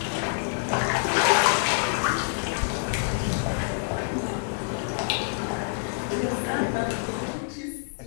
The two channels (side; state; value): right; silent; 60 dB below the other